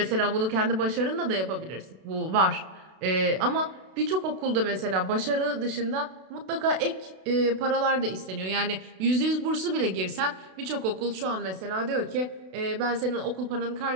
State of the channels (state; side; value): late; left; 32 ms